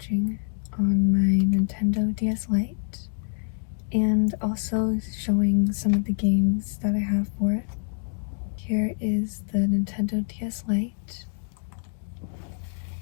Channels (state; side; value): silent; right; 61 dB below the other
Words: on my Nintendo DS Lite and also showing some of the games that I have for it. Here is the Nintendo DS Lite.